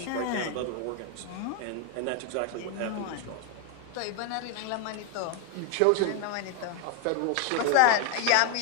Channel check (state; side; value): different; both; correlation 0.01